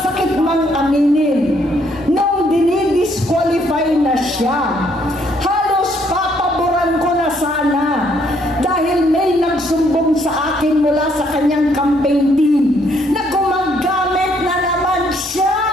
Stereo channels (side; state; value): both; normal; correlation 0.68